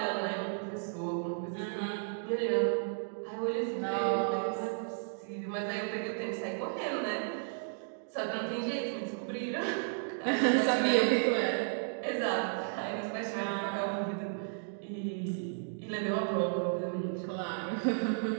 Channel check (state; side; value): silent; left; digital silence